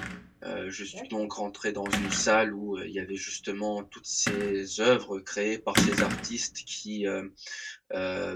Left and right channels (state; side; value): identical; both; correlation 1.00